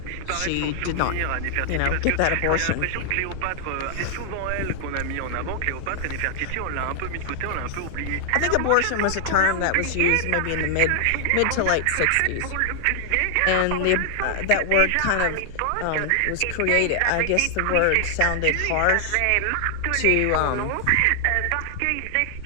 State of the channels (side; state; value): both; different; correlation 0.00